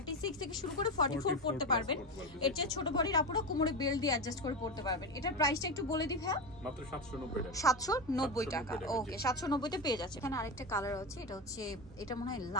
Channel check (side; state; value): both; normal; correlation 0.18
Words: থেকে শুরু করে 44 পড়তে পারবেন। এর চেয়ে ছোট বডির আপুরা কোমরে বেল্ট দিয়ে অ্যাডজাস্ট করে পড়তে পারবেন। এটার প্রাইসটা একটু বলে দিই ভাইয়া। মাত্র 790 টাকা। ওকে, 790 তে পেয়ে যাচ্ছে। এখানে আরেকটা কালার আছে, এটা হচ্ছে, এটা মনে হয়